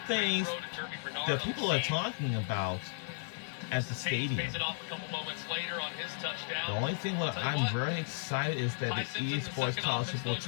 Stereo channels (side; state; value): right; silent; digital silence